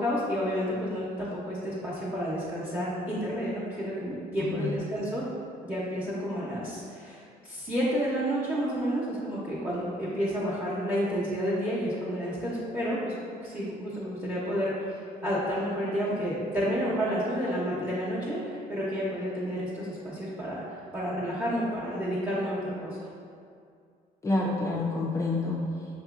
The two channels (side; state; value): both; normal; correlation 0.64